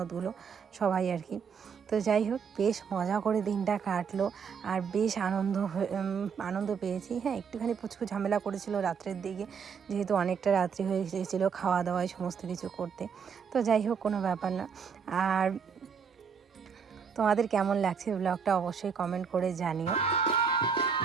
সবাই আর কি। তো যাই হোক বেশ মজা করে দিনটা কাটলো, আর বেশ আনন্দ পেয়েছি। হ্যাঁ একটুখানি পুচকু ঝামেলা করেছিল রাত্রের দিকে, যেহেতু অনেকটা রাত্রি হয়ে গিয়েছিলো খাওয়া দাওয়ায় সমস্ত কিছু করতে। তো যাই হোক কোনো ব্যাপার না। আর তোমাদের কেমন লাগছে ব্লগটা অবশ্যই কমেন্ট করে জানিও।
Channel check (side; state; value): left; quieter; 6.5 dB